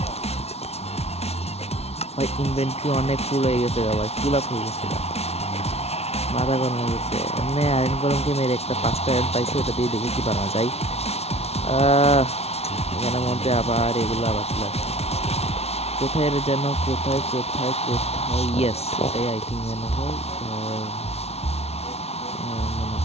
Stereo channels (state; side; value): late; right; 0.31 ms